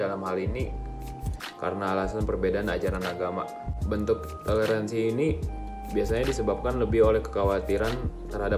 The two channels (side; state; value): both; identical; correlation 1.00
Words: hal ini karena alasan perbedaan ajaran agama. Bentuk toleransi ini biasanya disebabkan lebih oleh kekhawatiran